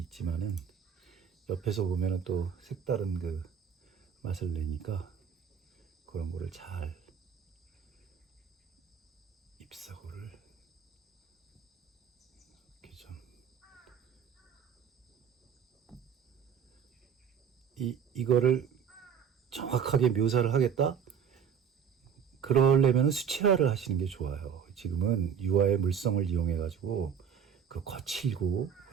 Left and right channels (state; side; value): quieter; left; 7.6 dB